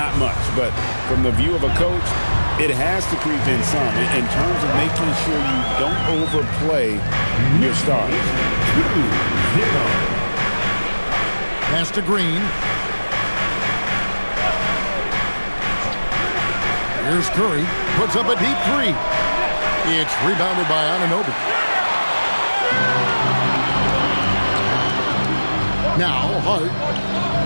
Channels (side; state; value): both; inverted; correlation -1.00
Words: much. But from the view of a coach, it has to creep in some in terms of making sure you don't overplay your starters. 2-0. Pass to Green. Here's Curry. Puts up a deep 3. It's rebounded by Anunoby. Now Hart.